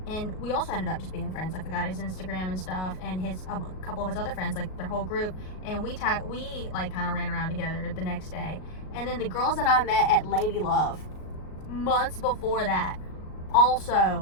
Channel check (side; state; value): right; late; 38 ms